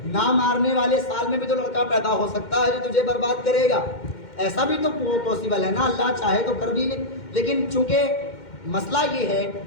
نہ مارنے والے سال میں بھی تو لڑکا پیدا ہو سکتا ہے جو تجھے برباد کرے گا. ایسا بھی تو پاسبل ہے نا، اللہ چاہے تو کر بھی لے. لیکن چونکہ مسئلہ یہ ہے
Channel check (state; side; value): late; right; 2.1 ms